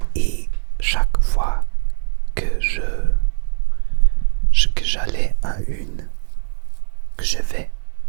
Et chaque fois que que j'allais à que je vais,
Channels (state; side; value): silent; left; digital silence